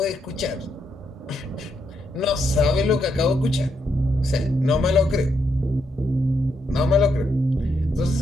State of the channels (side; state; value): both; normal; correlation 0.79